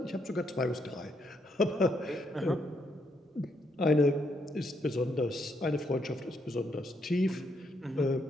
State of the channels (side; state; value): both; normal; correlation 0.76